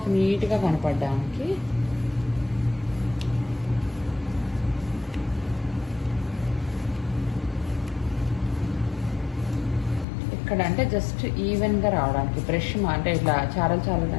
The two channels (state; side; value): drops out; right; at 10.1 s